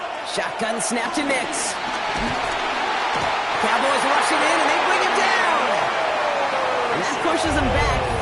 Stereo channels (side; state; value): both; identical; correlation 1.00